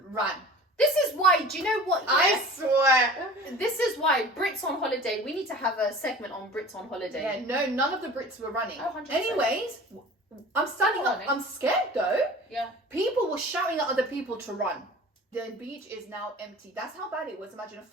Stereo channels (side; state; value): both; normal; correlation 0.41